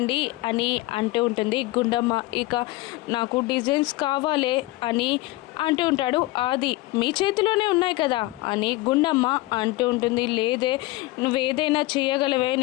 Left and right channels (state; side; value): quieter; right; 19.7 dB